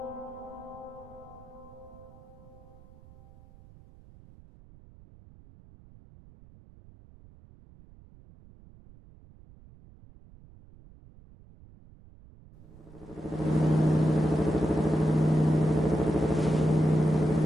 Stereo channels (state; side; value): noise; right; rumble, 23 dB below the sound